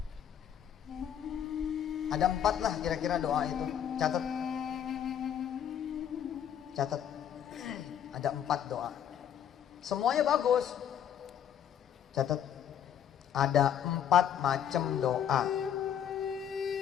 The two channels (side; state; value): right; quieter; 9.4 dB